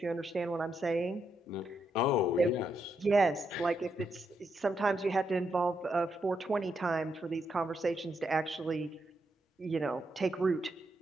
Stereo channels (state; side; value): normal; both; correlation 0.81